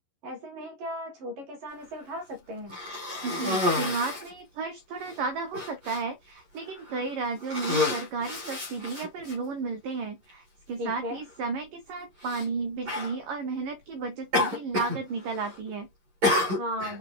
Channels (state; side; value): late; left; 11 ms